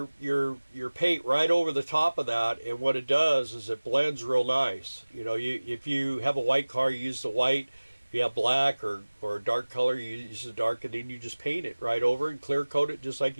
paint right over the top of that, and what it does is it blends real nice. You know, if you have a white car, you use the white. If you have black or a dark color, you use the dark, and then you just paint it right over and clear coat it just like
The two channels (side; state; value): both; inverted; correlation -1.00